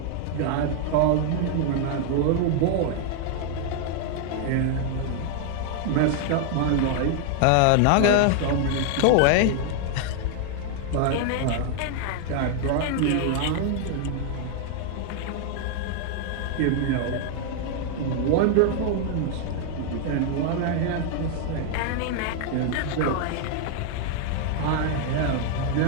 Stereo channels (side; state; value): both; different; correlation 0.00